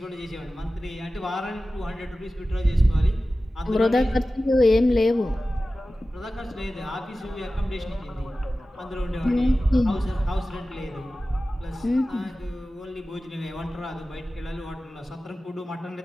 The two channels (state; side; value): normal; both; correlation 0.95